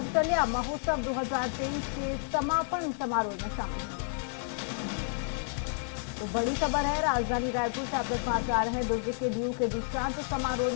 महोत्सव 2023 के समापन समारोह में शामिल होंगे। तो बड़ी खबर है, राजधानी रायपुर से आप तक समाचार हैं। दुर्ग के डीयू के दीक्षांत समारोह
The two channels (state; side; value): silent; right; digital silence